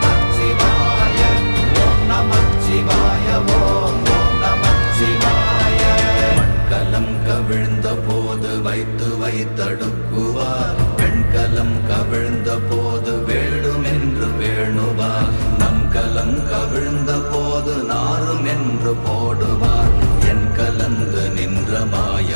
ஓம் நமச்சிவாய ஓம் நமச்சிவாய. மண்கலம் கவிழ்ந்த போது வைத்து வைத்தடுக்குவார், பெண்கலம் கவிழ்ந்த போது வேண்டுமென்று வேணுவார், நம் கலம் கவிழ்ந்த போது நாரும் என்று போடுவார். என் கலந்து நின்ற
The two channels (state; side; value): inverted; both; correlation -1.00